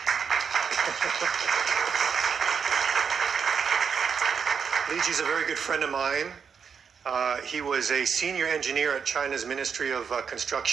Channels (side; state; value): left; quieter; 6.5 dB